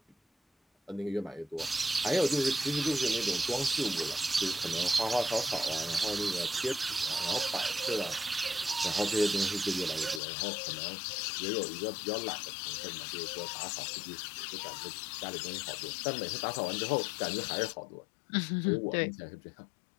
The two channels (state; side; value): drops out; right; at 10.2 s